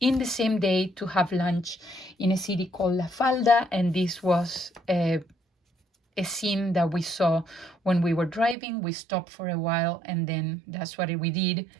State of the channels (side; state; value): left; drops out; at 8.6 s